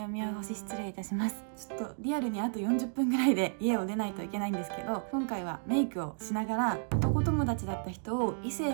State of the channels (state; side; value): silent; left; digital silence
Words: お見汚し失礼いたします。ちょっとリアルにあと40分ぐらいで家を出ないといけないんですけど、今回はメイクをしながら男友達だった人を異性